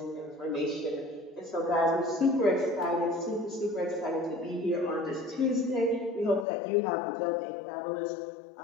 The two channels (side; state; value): right; drops out; at 6.5 s